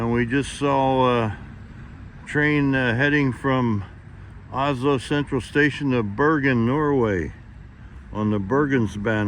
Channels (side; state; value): both; identical; correlation 1.00